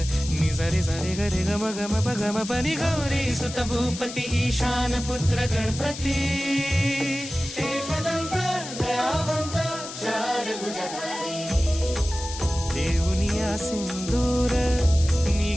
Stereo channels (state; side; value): noise; left; hiss, 10 dB below the sound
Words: नि सरी सरी गरी गम गम पगम पनी। गौरी सुत भूपती ईशान पुत्र गणपती, एकदंत दयावंत चार भुजधारी। देऊनिया सिंदूर